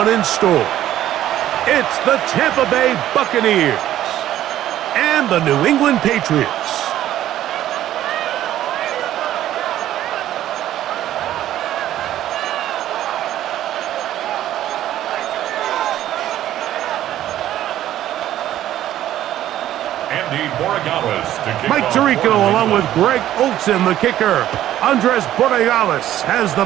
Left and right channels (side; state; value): left; quieter; 12.7 dB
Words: in store. It's the Tampa Bay Buccaneers and the New England Patriots. Mike Tirico along with Greg Olsen, the kicker. Andres Borregales has the